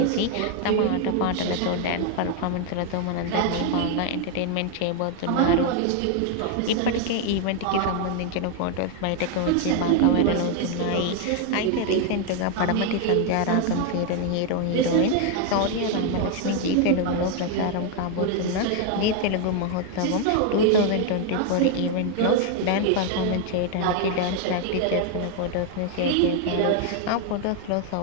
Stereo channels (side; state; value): both; different; correlation 0.01